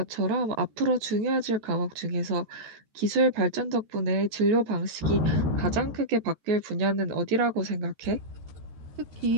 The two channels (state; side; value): late; left; 13 ms